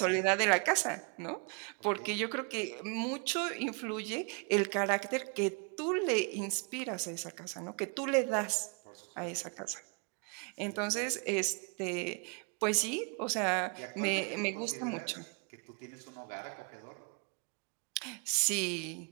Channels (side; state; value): left; quieter; 35.5 dB